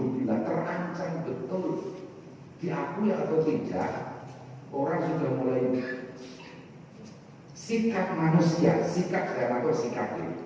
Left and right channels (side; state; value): both; identical; correlation 1.00